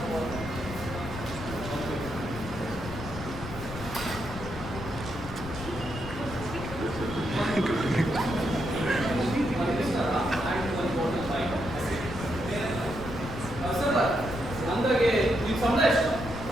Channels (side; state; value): left; noise; rumble, 10 dB below the sound